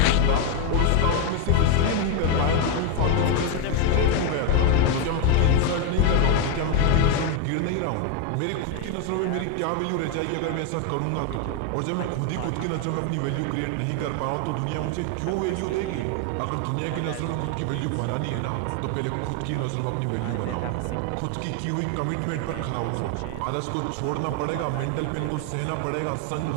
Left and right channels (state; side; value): different; both; correlation 0.01